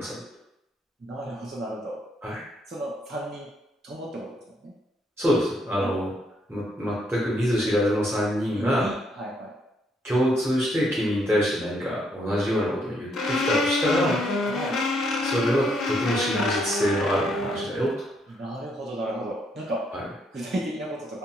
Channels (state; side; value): normal; both; correlation 0.73